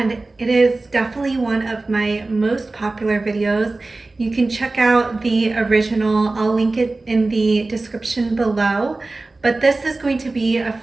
it is definitely one of my most popular videos. You can check out the original. I'll link it in the description below. But this is going to be a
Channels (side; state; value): left; quieter; 3.3 dB